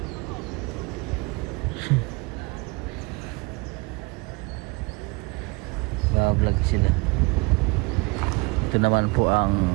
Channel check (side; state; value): left; quieter; 27.6 dB